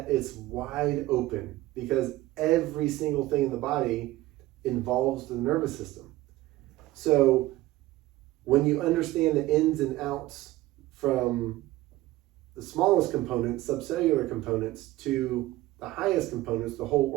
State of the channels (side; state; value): left; quieter; 17.2 dB